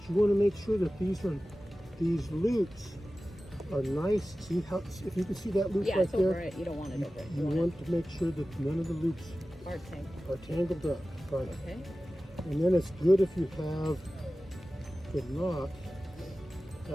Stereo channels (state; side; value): normal; both; correlation 0.96